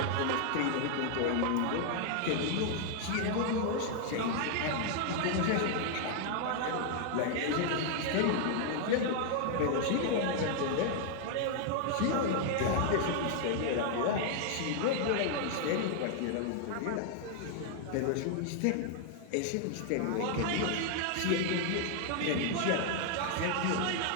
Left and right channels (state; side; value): different; both; correlation 0.00